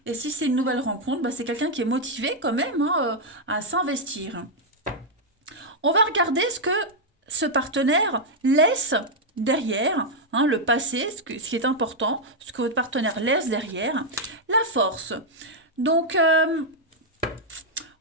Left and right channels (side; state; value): both; normal; correlation -0.02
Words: Et si c'est une nouvelle rencontre, bah, c'est quelqu'un qui est motivé quand même hein, à s'investir. On va regarder ce que ce partenaire laisse derrière, hein, le passé, ce qui est important, ce que votre partenaire laisse derrière, la force. Donc,